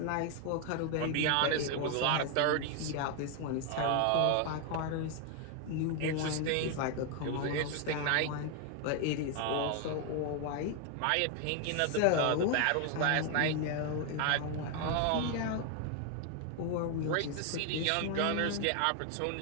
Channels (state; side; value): different; both; correlation 0.01